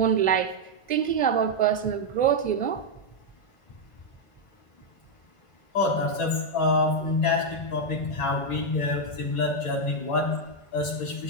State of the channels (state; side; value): late; right; 1.5 ms